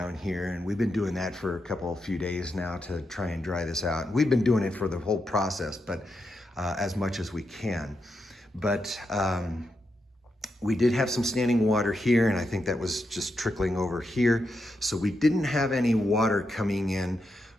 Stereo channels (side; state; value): both; normal; correlation 0.85